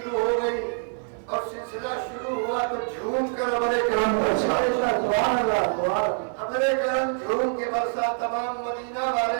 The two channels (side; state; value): left; silent; 61 dB below the other